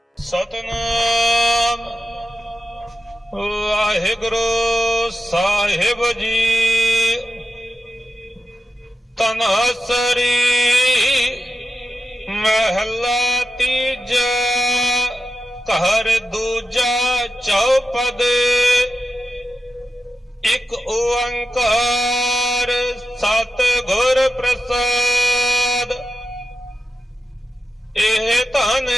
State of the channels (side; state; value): both; normal; correlation 0.90